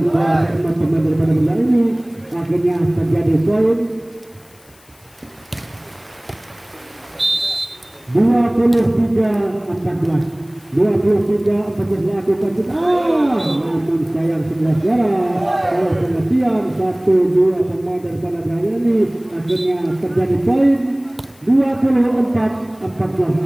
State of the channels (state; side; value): noise; left; hiss, 29 dB below the sound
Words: teman-teman daripada bola ini akhirnya terjadi poin 23-14 lakukan namun sayang 11 kalau pengertian 1-2 pemain daripada Raya ini akhirnya terjadi poin